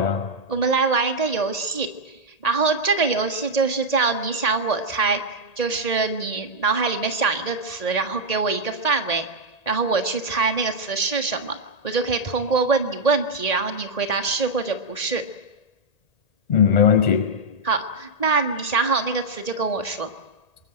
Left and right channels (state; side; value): late; right; 1.8 ms